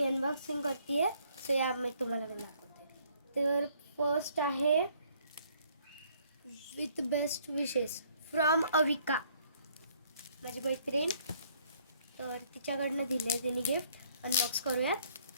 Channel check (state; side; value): inverted; both; correlation -0.64